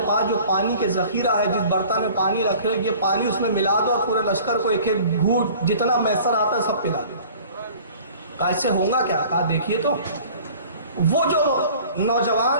پاس جو پانی کے ذخیرہ ہے، جس برتن میں پانی رکھے ہو، یہ پانی اس میں ملا دو اور پورے لشکر کو ایک ایک گھونٹ جتنا میسر آتا ہے سب پلا دو۔ کہا اس سے ہوگا کیا؟ کہا دیکھیے تو وہ جو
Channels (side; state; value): both; inverted; correlation -0.47